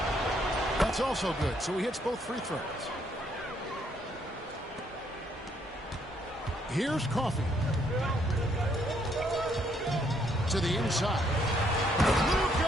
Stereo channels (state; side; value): normal; both; correlation 0.70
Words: That's also good. So he hits both free throws. Here's Coffey. To the inside.